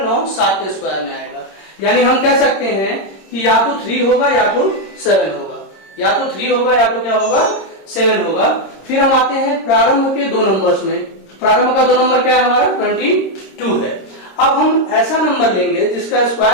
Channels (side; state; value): right; late; 26 ms